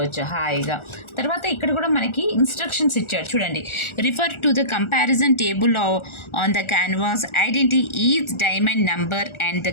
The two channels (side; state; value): right; late; 1.4 ms